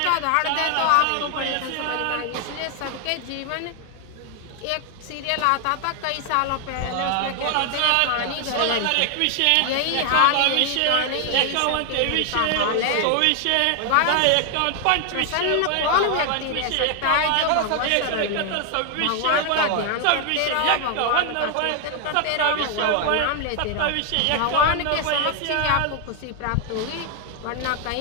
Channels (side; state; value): both; different; correlation 0.01